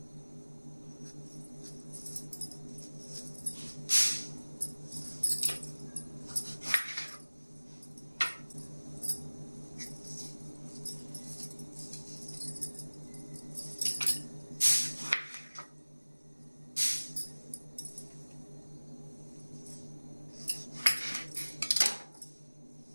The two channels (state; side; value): inverted; both; correlation -1.00